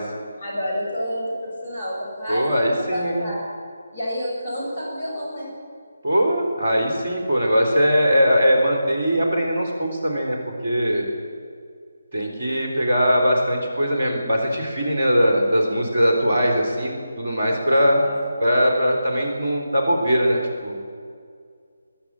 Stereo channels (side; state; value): both; inverted; correlation -0.90